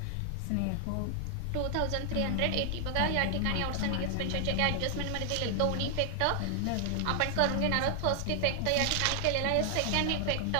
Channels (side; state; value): both; different; correlation 0.00